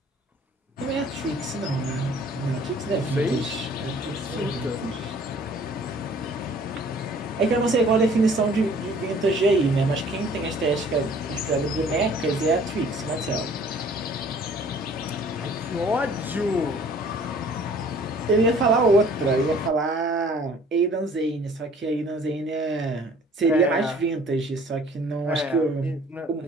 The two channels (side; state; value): both; normal; correlation 0.54